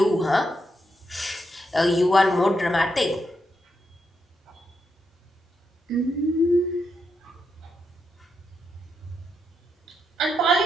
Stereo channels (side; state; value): both; normal; correlation 0.82